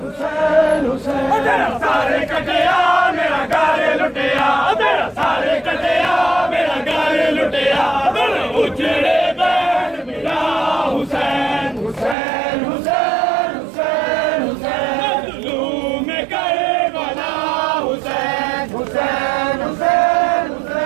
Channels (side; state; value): left; drops out; at 12.2 s